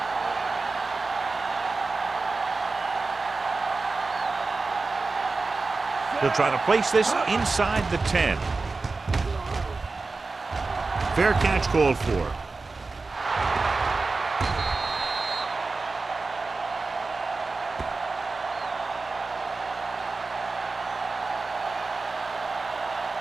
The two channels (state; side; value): quieter; left; 3.8 dB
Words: He'll try to place this inside the 10. Fair catch called for.